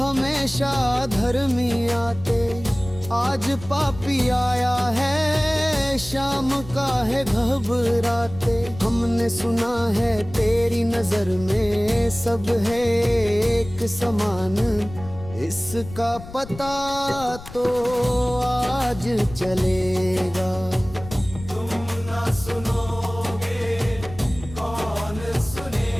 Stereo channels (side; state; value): left; noise; rumble, 15 dB below the sound